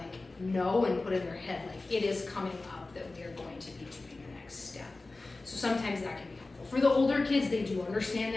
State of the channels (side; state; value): right; quieter; 3.3 dB